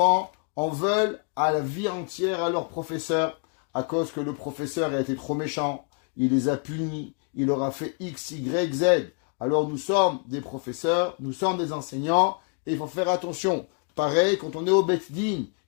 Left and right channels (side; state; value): right; quieter; 38.3 dB